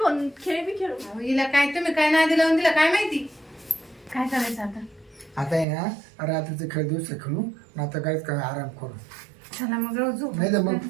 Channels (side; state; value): left; drops out; at 5.7 s